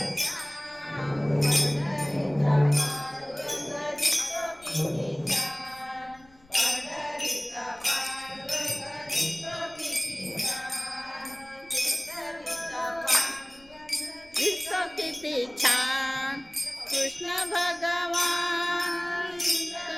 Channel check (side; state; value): left; noise; rumble, 28 dB below the sound